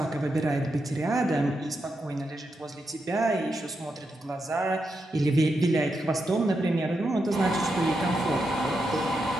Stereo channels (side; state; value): both; normal; correlation 0.85